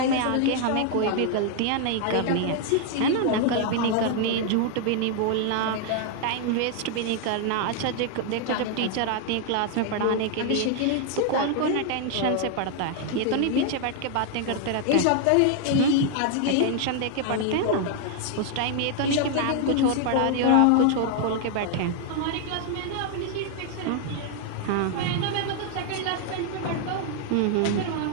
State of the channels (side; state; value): both; different; correlation 0.00